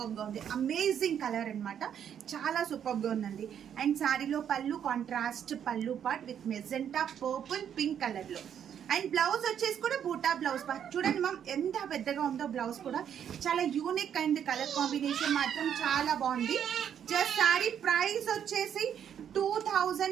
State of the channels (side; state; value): left; quieter; 8.9 dB